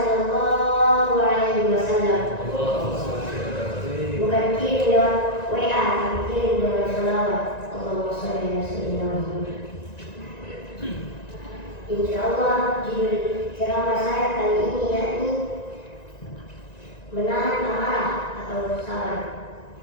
alaihi wasallam. Bukan kirim lewat WA, tapi kirim lewat salawat. Allahumma shalli ala sayyidina Muhammad. Insyaallah judul ceramah saya kali ini yakni menahan amarah atau sabar.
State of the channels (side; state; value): right; late; 1.9 ms